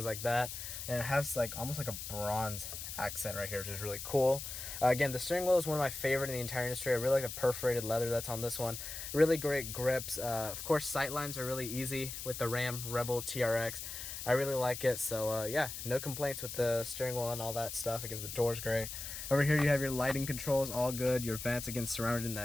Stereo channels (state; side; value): noise; left; hiss, 7 dB below the sound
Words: like that. And it has like almost like a bronze accent right here, which is really cool. Again, the steering wheel is one of my favorite in the entire industry. I really like the perforated leather that's on this one. Really great grips. Of course, sight lines are really easy with the Ram Rebel TRX. I really like it, so yeah, no complaints with the steering wheel and all that stuff. Again, the door's great. Over here you have your lighting controls, all good. Your vents, again, surrounded in